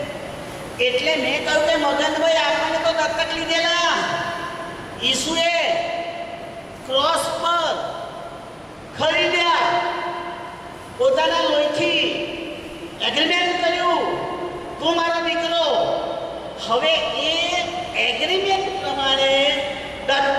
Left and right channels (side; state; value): both; identical; correlation 1.00